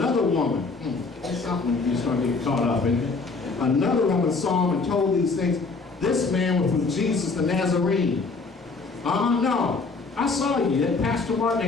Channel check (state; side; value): quieter; right; 4.1 dB